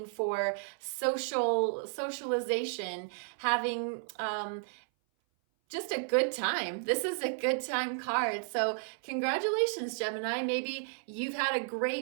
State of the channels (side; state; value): left; silent; 56 dB below the other